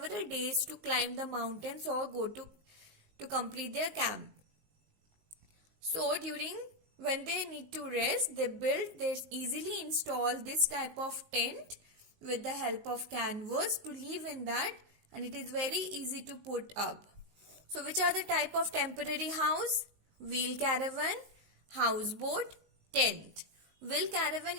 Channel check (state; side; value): late; left; 19 ms